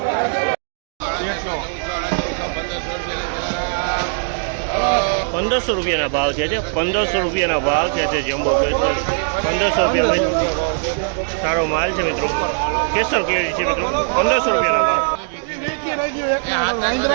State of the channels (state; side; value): silent; left; digital silence